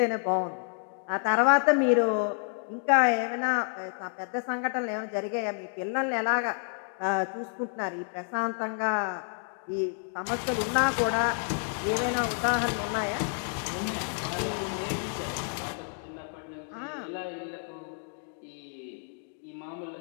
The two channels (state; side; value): silent; right; 58 dB below the other